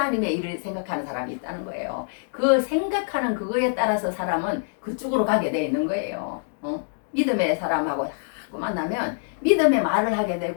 일을 생각하는 사람이 있다는 거예요. 그 생각하는 그거에 따라서 사람은 그쪽으로 가게 돼 있는 거예요. 믿음의 사람하고 자꾸 만나면 믿음의 말을 하게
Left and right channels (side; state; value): right; silent; digital silence